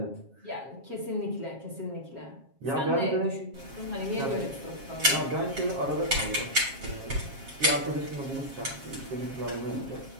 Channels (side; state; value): left; late; 7.4 ms